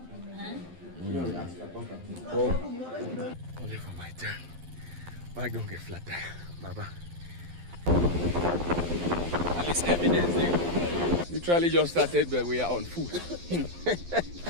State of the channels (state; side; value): late; left; 12 ms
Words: Only for my turn. Bike don't get flat tire, Baba. At least evidence there. Literally just started, but we are on foot.